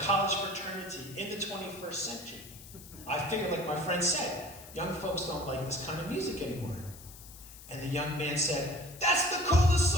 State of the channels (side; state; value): left; noise; hiss, 17 dB below the sound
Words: fraternity in the 21st century. I figured, like my friend said, young folks don't like this kind of music anymore. And the young man said, "That's the coolest